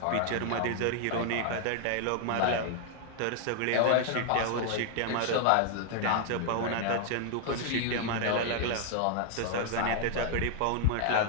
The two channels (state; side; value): different; both; correlation 0.00